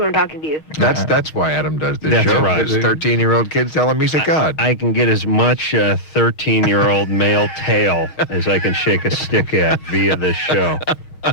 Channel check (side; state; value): right; late; 6.4 ms